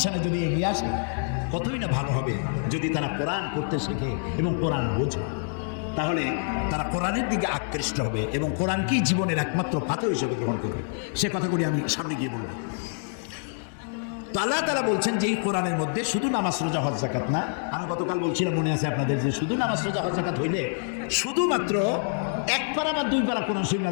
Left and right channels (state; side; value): silent; right; digital silence